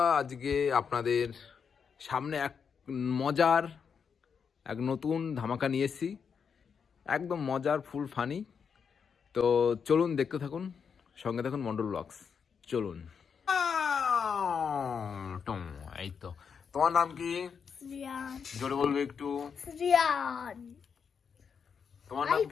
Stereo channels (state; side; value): quieter; right; 6.5 dB